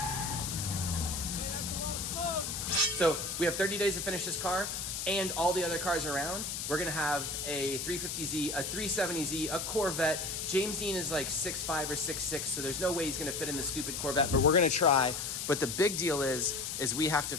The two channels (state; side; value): noise; left; hiss, 4 dB below the sound